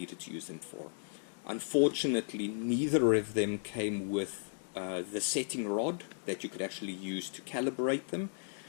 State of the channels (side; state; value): right; silent; digital silence